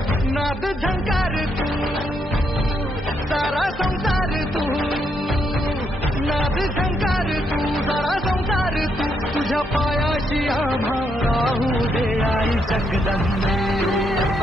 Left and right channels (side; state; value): both; normal; correlation 0.77